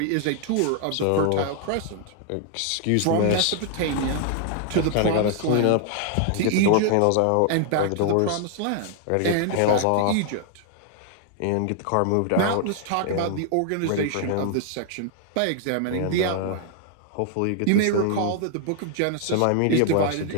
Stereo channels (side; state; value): both; different; correlation 0.00